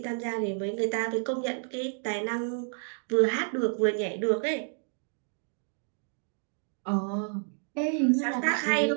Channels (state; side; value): silent; left; 58 dB below the other